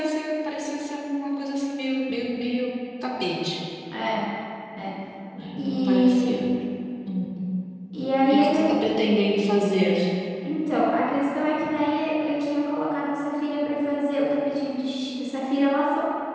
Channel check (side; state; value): both; identical; correlation 1.00